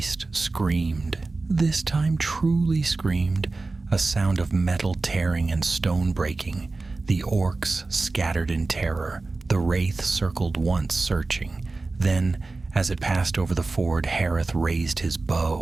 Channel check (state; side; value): quieter; left; 3.5 dB